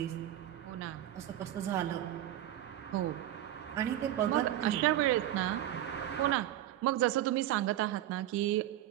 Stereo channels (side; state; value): left; quieter; 12.8 dB